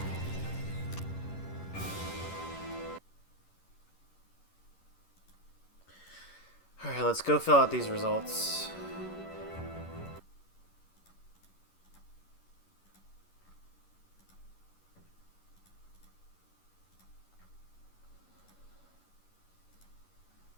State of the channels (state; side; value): late; right; 11 ms